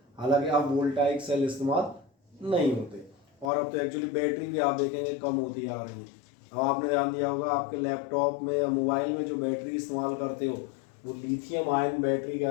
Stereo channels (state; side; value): drops out; right; at 3.5 s